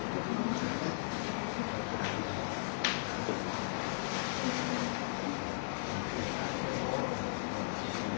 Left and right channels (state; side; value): silent; right; digital silence